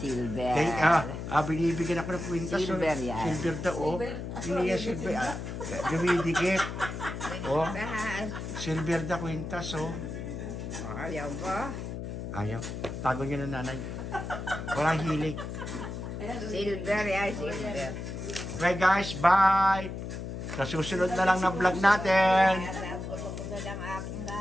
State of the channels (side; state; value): left; noise; hum, 6 dB below the sound